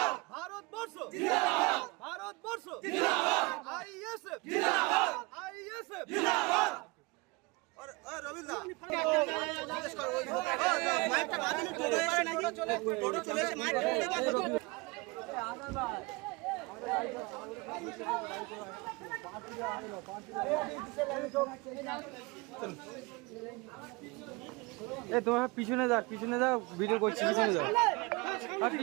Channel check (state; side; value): quieter; left; 25.4 dB